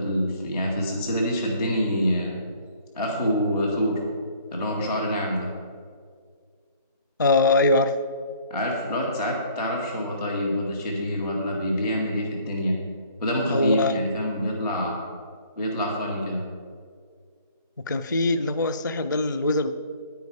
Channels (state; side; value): inverted; both; correlation -0.57